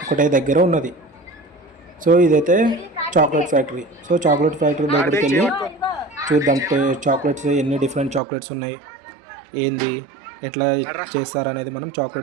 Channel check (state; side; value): drops out; left; at 8.2 s